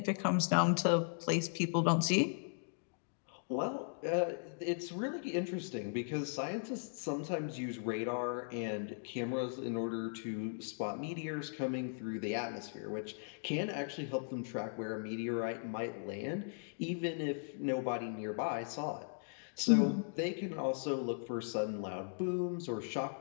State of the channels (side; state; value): right; silent; digital silence